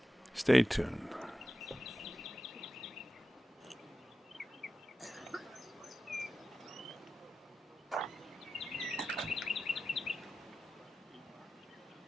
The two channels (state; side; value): normal; both; correlation 0.93